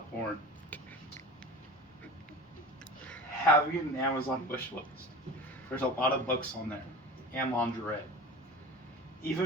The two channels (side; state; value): both; normal; correlation 0.36